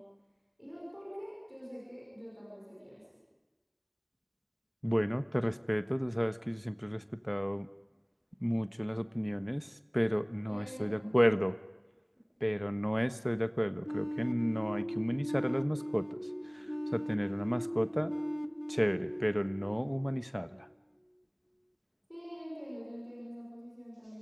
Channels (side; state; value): both; identical; correlation 1.00